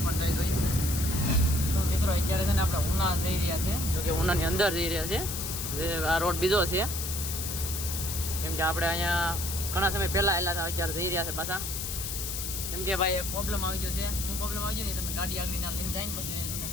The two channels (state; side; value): noise; left; hiss, 4 dB below the sound